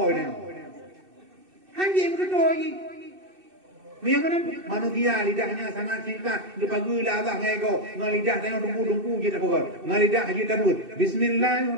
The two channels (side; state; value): left; late; 2.6 ms